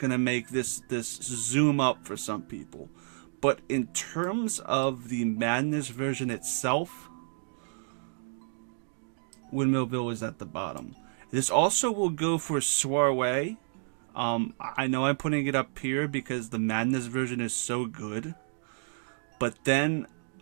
to make this zoom up for some people. But in terms of the Madness version itself, Windmillville is at the bottom. This also will go for Soiree. I know I'm putting it up here because the Madness version is so good. But then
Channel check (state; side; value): silent; left; digital silence